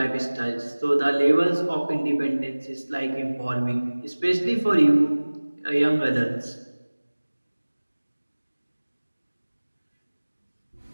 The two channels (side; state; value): both; inverted; correlation -1.00